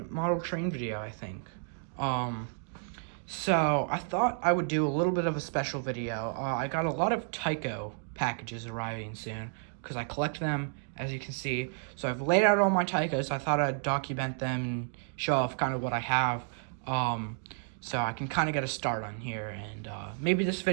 model train video, I think. So I thought I would do a little bit of a special video. I got a lot of Tyco packages arriving soon, because I collect them, as you can see. So I've laid out all my Tycos. I thought I'd document them and show off kind of what I have. So I can kind of get a start on here, and maybe this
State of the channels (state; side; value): silent; left; 57 dB below the other